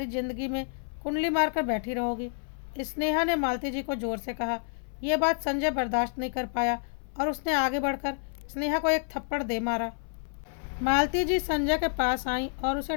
ज़िंदगी में कुंडली मार कर बैठी रहोगी। स्नेहा ने मालती जी को ज़ोर से कहा। यह बात संजय बर्दाश्त नहीं कर पाया और उसने आगे बढ़कर स्नेहा को एक थप्पड़ दे मारा। मालती जी संजय के पास आई और उसे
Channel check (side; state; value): right; silent; 58 dB below the other